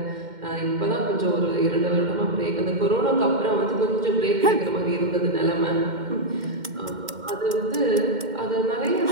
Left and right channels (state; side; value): late; left; 2.1 ms